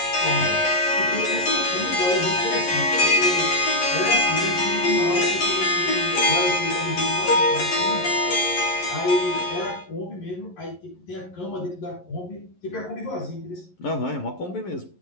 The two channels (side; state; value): right; late; 11 ms